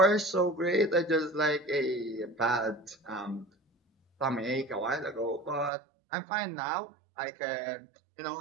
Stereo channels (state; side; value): drops out; left; at 5.7 s